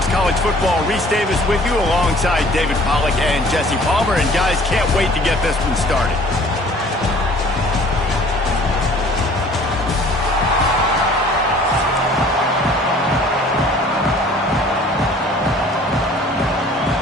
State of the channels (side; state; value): both; normal; correlation 0.52